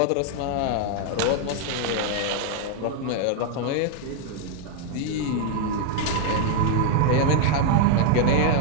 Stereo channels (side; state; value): both; different; correlation 0.01